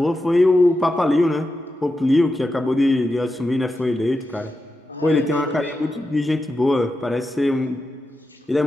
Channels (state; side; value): normal; both; correlation 0.89